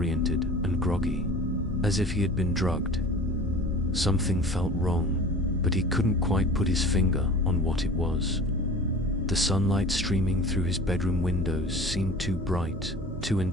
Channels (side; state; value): both; normal; correlation 0.41